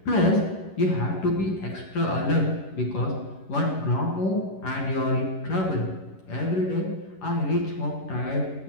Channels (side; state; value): right; late; 11 ms